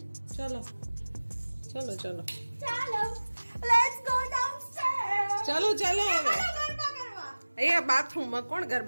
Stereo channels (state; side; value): inverted; both; correlation -1.00